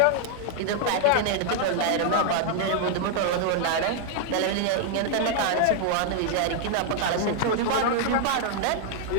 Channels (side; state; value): both; different; correlation 0.00